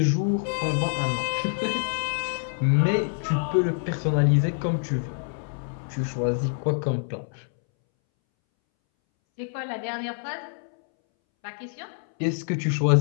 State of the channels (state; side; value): silent; right; 61 dB below the other